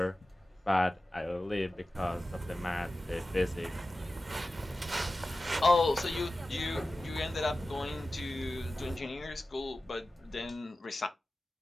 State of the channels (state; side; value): normal; both; correlation 0.95